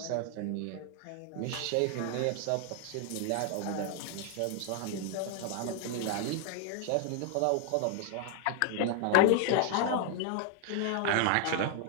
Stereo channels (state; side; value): different; both; correlation 0.00